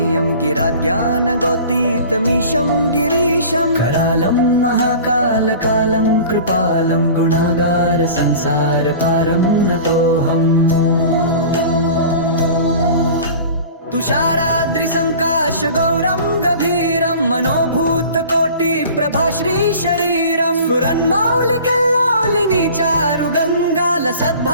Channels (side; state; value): both; inverted; correlation -0.41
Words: गिराज्ञानगोतीतमीशं गिरीशं करालं महाकालकालं कृपालं गुणागार संसारपारं नतोऽहम् तुषाराद्रिसङ्काश गौरं गभीरं मनोभूतकोटिप्रभाश्रीशरीरं स्फुरन्मौलिकल्लोलिनी चारुगङ्गा